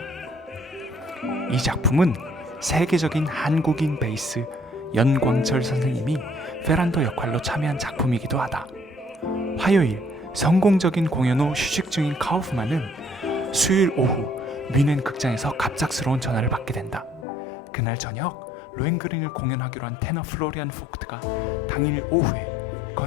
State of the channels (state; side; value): drops out; right; at 17.2 s